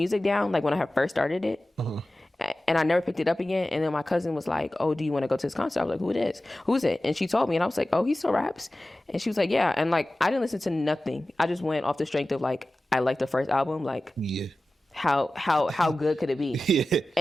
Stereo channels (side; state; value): both; normal; correlation 0.96